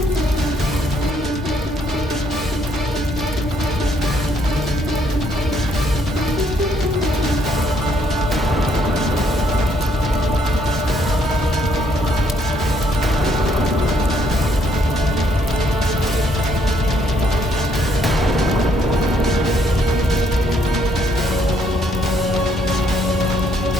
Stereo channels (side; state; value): both; normal; correlation 0.69